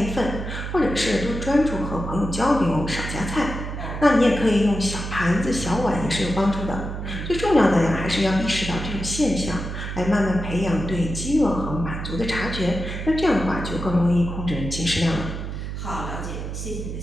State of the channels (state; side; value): noise; right; hum, 6 dB below the sound